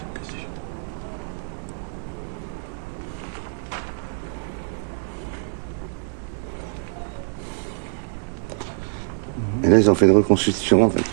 Et là, ils ont fait une reconstruction, en fait,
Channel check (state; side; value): silent; left; 62 dB below the other